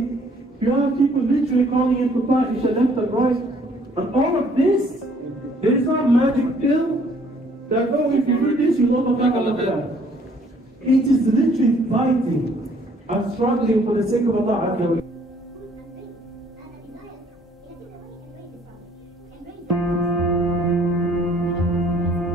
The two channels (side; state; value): both; normal; correlation 0.61